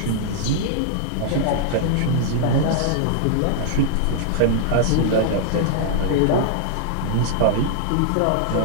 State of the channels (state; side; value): different; both; correlation -0.01